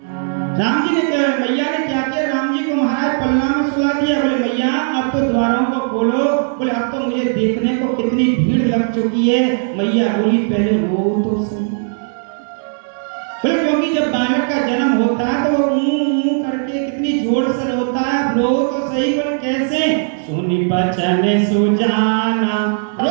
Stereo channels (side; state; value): left; silent; digital silence